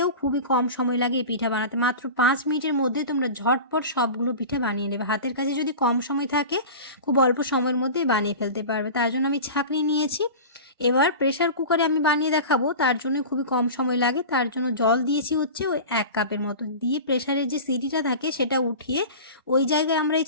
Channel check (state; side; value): inverted; both; correlation -0.32